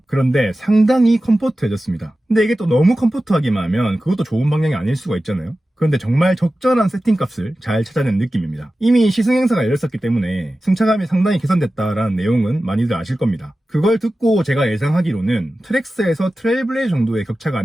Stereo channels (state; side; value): normal; both; correlation 0.94